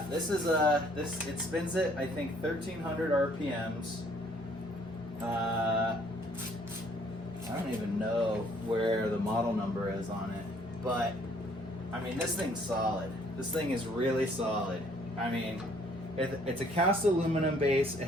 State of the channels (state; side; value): normal; both; correlation 0.62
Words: It spins it, I think, 1300 RPMs. I don't even know where the model number is on it, but I mean, this thing's solid. This thing is really solid. I mean, it's a cast aluminum base. It